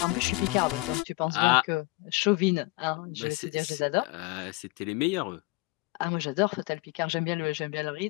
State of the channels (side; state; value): right; quieter; 23.6 dB